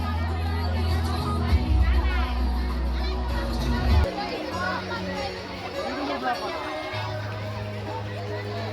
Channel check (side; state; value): both; identical; correlation 1.00